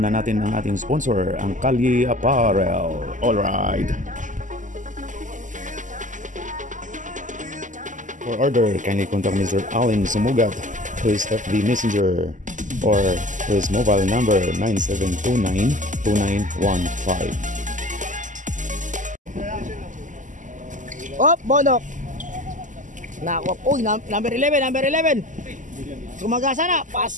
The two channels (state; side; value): late; left; 0.37 ms